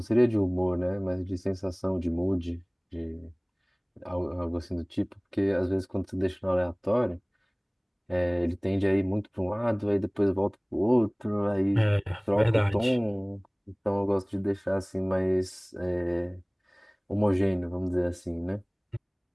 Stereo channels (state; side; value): identical; both; correlation 1.00